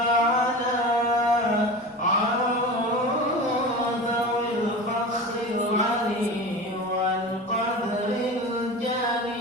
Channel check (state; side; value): normal; both; correlation 0.31